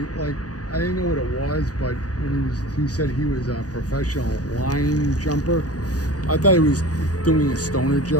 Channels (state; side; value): late; right; 0.68 ms